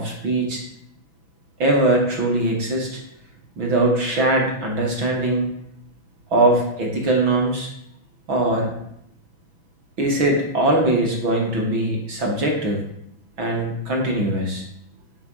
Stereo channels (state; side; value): late; left; 6.1 ms